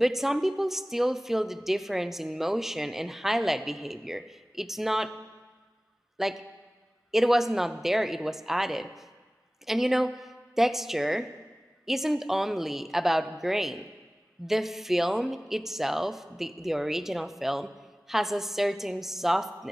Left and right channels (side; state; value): both; normal; correlation 0.98